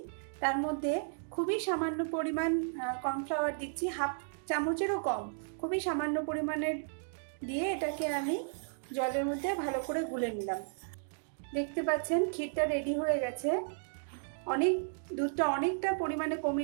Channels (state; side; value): silent; left; digital silence